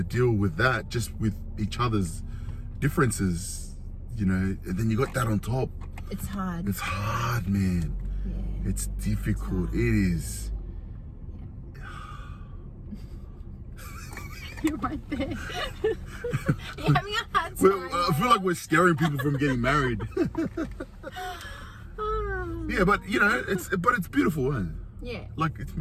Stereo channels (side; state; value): both; identical; correlation 1.00